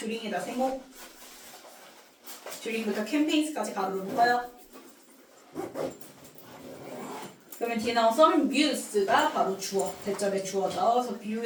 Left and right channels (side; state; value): both; identical; correlation 1.00